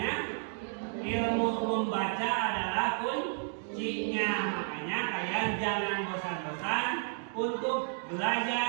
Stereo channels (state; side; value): silent; left; 56 dB below the other